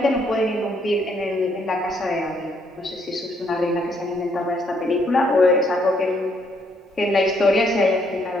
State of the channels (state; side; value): normal; both; correlation 0.71